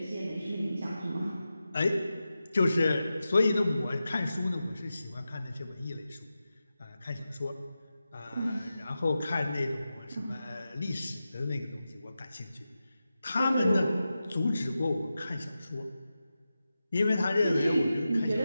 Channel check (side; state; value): both; inverted; correlation -0.92